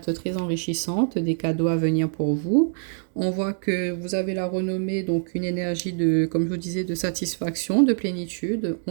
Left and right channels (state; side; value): silent; left; digital silence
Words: très enrichissantes, des cadeaux à venir pour vous. On voit que vous avez la renommée, donc une énergie de, comme je vous disais, de satisfaction, de plénitude.